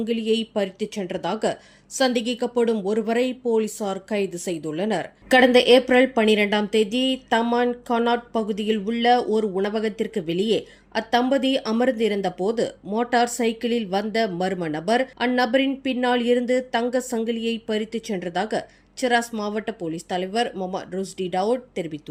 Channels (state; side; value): identical; both; correlation 1.00